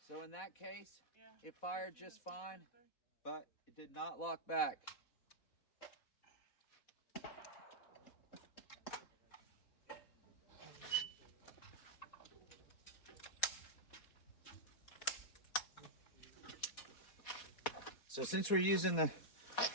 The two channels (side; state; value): right; late; 4.1 ms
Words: So in that case, Yeah. it fired just fine, but it did not lock back. So since we're using the